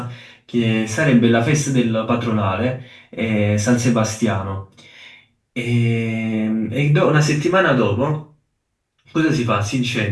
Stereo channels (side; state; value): both; identical; correlation 1.00